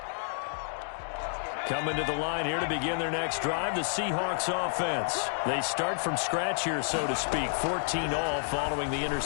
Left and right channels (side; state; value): right; silent; digital silence